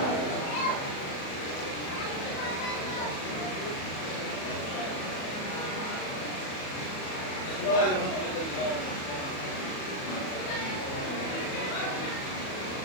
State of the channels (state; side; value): late; right; 37 ms